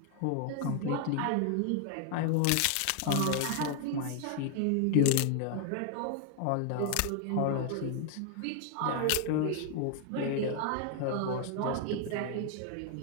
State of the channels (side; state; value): both; different; correlation 0.00